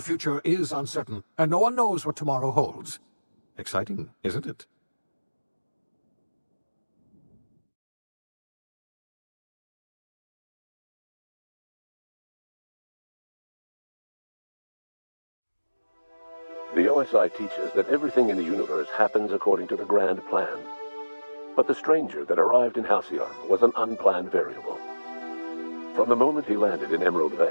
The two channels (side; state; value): both; inverted; correlation -1.00